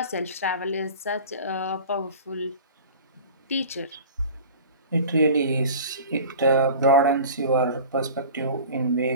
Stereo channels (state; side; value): inverted; both; correlation -0.40